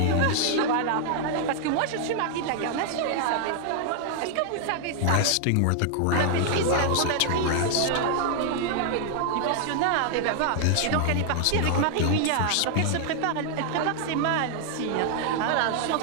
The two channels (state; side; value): different; both; correlation 0.00